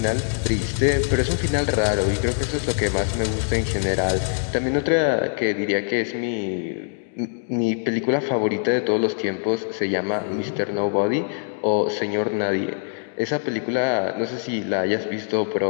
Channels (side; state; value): right; silent; digital silence